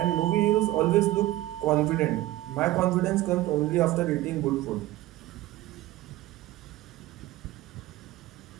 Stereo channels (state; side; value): quieter; left; 16.2 dB